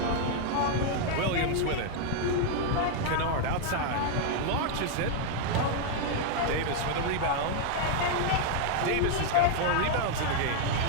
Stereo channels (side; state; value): both; different; correlation 0.00